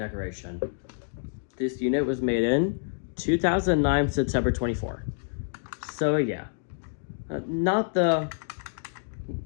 This unit was made in 2009, September 24. So yeah, not the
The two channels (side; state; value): right; silent; digital silence